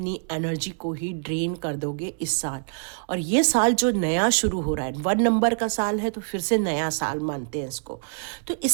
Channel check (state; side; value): silent; left; digital silence